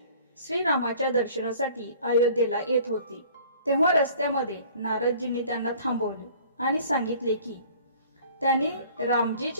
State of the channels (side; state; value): both; inverted; correlation -0.51